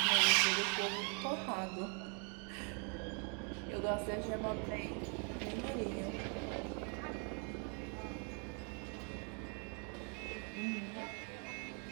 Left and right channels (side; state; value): left; quieter; 38.7 dB